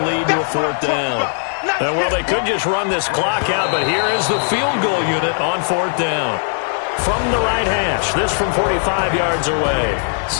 lead to a 4th down. Well, they could just run this clock out, but here is the field goal unit on 4th down. From the right hash, this from 45 yards away.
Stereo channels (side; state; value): right; silent; 58 dB below the other